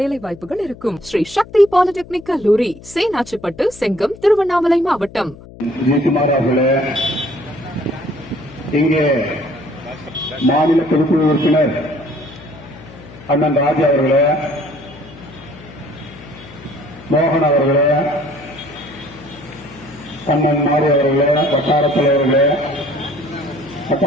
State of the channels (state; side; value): noise; left; hum, 19 dB below the sound